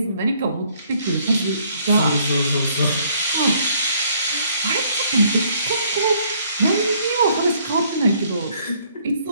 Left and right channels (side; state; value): both; inverted; correlation -0.64